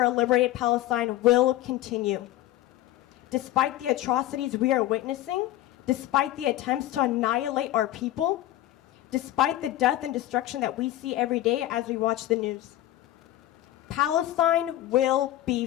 a liberated Palestine will continue. Despite the atrocities we are witnessing, despite the attempts to annihilate our people, despite the death and destruction that we see every day as we watch the news, Palestine will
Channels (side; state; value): right; quieter; 14.8 dB